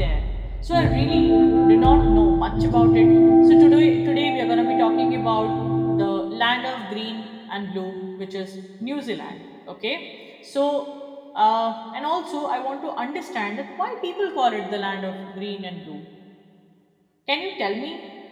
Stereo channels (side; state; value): both; identical; correlation 1.00